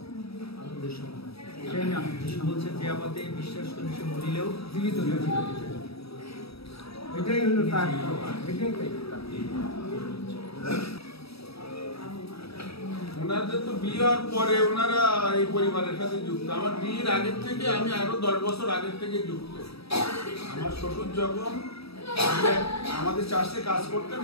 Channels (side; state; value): right; late; 0.77 ms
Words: এটাই আমি বলছেন যে আমাদের বিশ্বাস করে সে মরিলেও জীবিত, এটাই হলো তার, এটাই ওনাদের তো বিয়ের পরে ওনারা এই পরিবারের সাথে যুক্ত। আমার বিয়ের আগের থেকে আমি আরো 10 বছর আগের থেকে যুক্ত। আমার শ্বশুর যখন আমাদের চার্চে কাজ করতেন